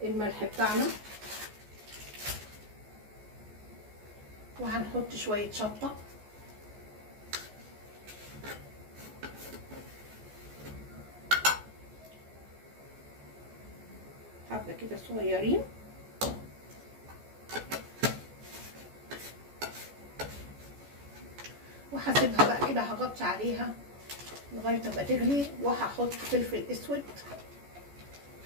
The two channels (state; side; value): late; left; 14 ms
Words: الملح بتاعنا. وهنحط شويه شطه، حبه كده صغيرين، وهسيبها بقى كده، هغطي عليها لغايه ما تغلي. وهحط فلفل اسود